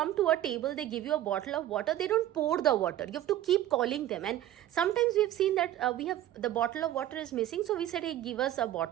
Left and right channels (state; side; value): quieter; left; 12.9 dB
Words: to a table, they give you a bottle of water. They don't pour the water. You have to keep calling them. And sometimes we've seen that the bottle of water is missing. So we said, hey, give us a